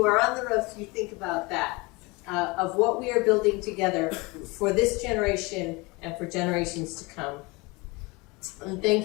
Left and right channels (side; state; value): right; quieter; 25.4 dB